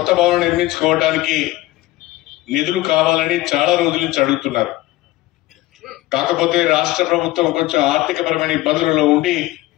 భవనం నిర్మించుకోవడానికి నిధులు కావాలని చాలా రోజుల నుంచి అడుగుతున్నారు. కాకపోతే రాష్ట్ర ప్రభుత్వం కొంచెం ఆర్థికపరమైన ఇబ్బందులలో ఉండి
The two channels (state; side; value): quieter; right; 17.8 dB